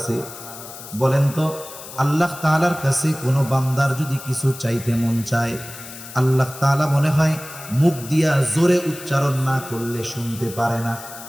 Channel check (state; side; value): noise; left; hiss, 14 dB below the sound